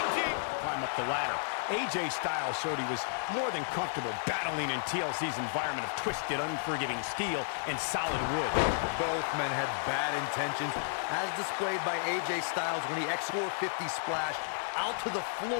climb up the ladder. AJ Styles showed he was more than comfortable battling in TLC's environment of twisted, unforgiving steel and solid wood. Both men had bad intentions, as displayed by AJ Styles when he X450 splashed out to the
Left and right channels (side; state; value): right; silent; digital silence